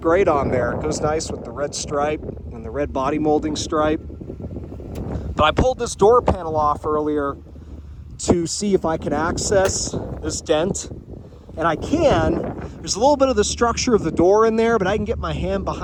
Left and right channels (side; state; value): both; identical; correlation 1.00